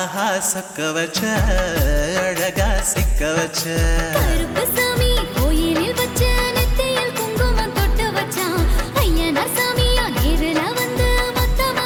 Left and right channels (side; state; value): both; identical; correlation 1.00